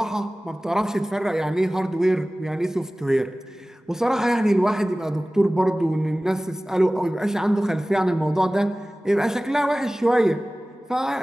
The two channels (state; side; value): normal; both; correlation 0.98